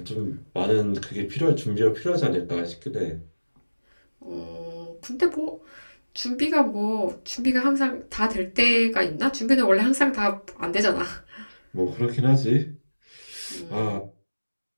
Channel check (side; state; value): both; inverted; correlation -1.00